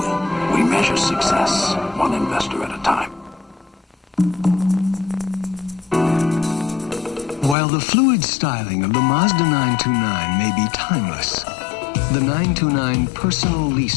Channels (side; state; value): right; drops out; at 7.6 s